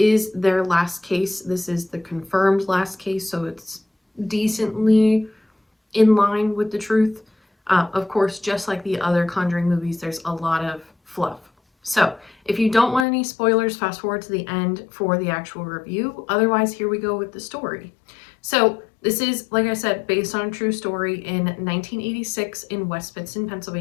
their last case. This is the confirmed last case, so it's decently in line with the truth. Of course, just like the other Conjuring movies, there's a lot of fluff. So if you don't want any spoilers, fast forward to the end for the actual review. Otherwise, here we go with the story. So this is, like I said, based on a true story in 1986 in West Pittston,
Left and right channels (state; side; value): drops out; right; at 13.1 s